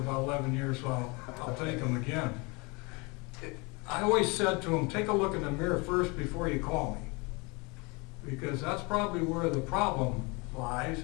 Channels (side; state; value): right; quieter; 28.1 dB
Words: 11 years, so I'll take them again. I always said to them, take a look in the mirror first before you call me, because that's probably where the problem lies,